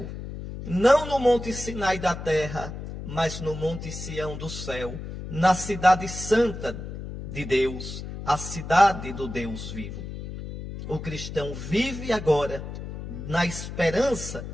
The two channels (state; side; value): noise; left; hum, 9 dB below the sound